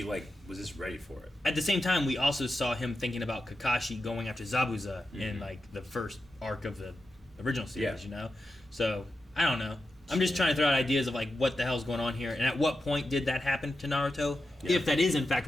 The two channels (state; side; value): normal; both; correlation 0.89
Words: was just ready for it. At the same time, we also saw him thinking about Kakashi going after Zabuza in like the first arc of the original series, Yeah. you know? So, I don't know. I'm just trying to throw out ideas of like what the hell's going on here and at what point did that happen to Naruto? Yeah. If that is in fact